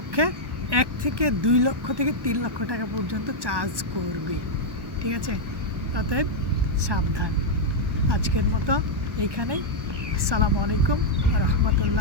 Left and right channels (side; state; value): left; late; 1.1 ms